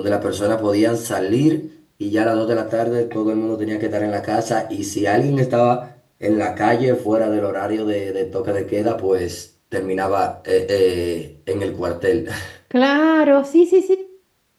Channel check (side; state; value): both; identical; correlation 1.00